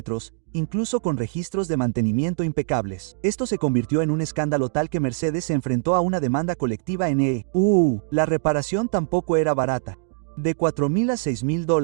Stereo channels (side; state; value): left; silent; 62 dB below the other